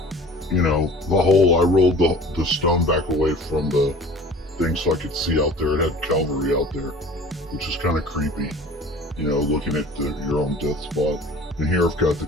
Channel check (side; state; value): both; normal; correlation 0.44